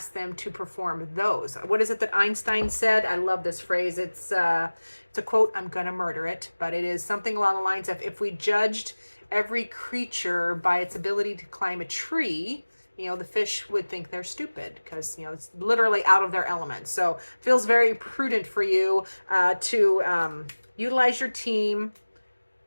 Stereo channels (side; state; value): both; inverted; correlation -1.00